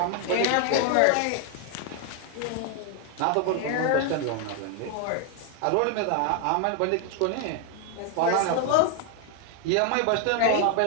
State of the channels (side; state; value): both; different; correlation 0.01